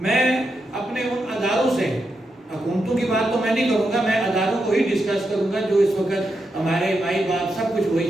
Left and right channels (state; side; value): normal; both; correlation 0.85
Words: اپنے ان اداروں سے، حکومتوں کی بات تو میں نہیں کروں گا، میں اداروں کو ہی ڈسکس کروں گا جو اس وقت ہمارے مائی باپ سب کچھ